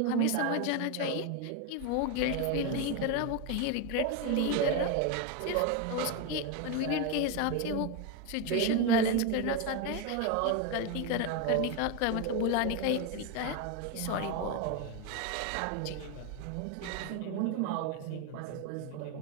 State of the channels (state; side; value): different; both; correlation 0.02